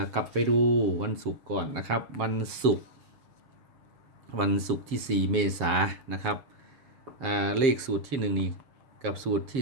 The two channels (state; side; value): late; left; 7.3 ms